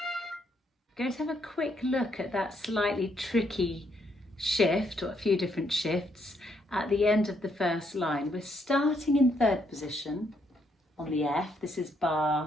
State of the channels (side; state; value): both; normal; correlation 0.74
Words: Going to have a quick look at that slightly tricky shift, or a few different shifts, at the end of the 1st line. We're starting in 3rd position on the F. This is